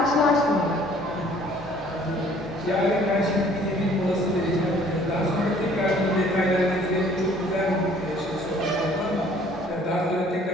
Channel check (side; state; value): both; normal; correlation 0.57